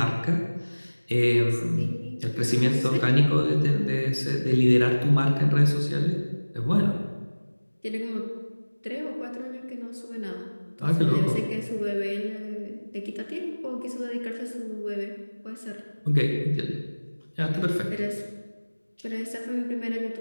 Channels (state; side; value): inverted; both; correlation -1.00